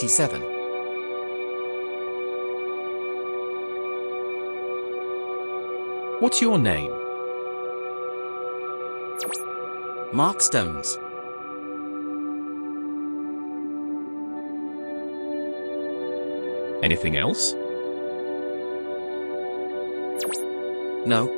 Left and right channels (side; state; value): both; inverted; correlation -1.00